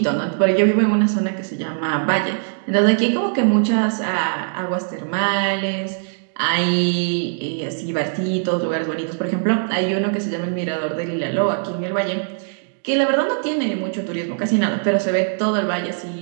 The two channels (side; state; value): left; silent; digital silence